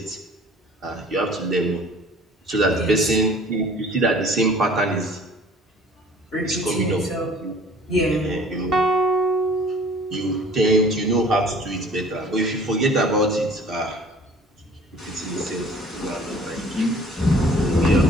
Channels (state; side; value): normal; both; correlation 0.51